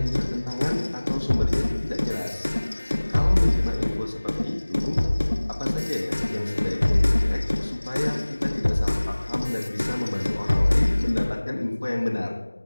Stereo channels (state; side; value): inverted; both; correlation -1.00